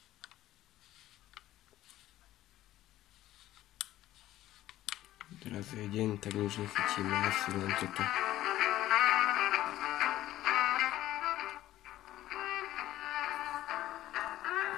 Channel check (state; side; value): quieter; right; 14.4 dB